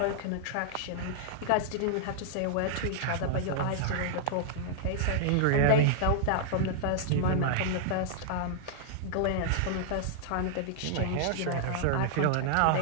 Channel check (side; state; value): both; different; correlation -0.01